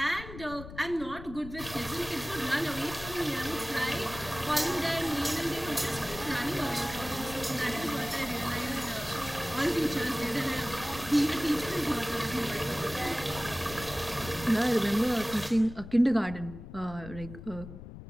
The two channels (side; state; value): left; noise; rumble, 13 dB below the sound